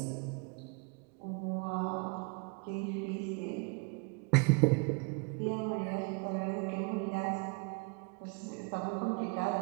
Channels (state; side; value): quieter; left; 31.8 dB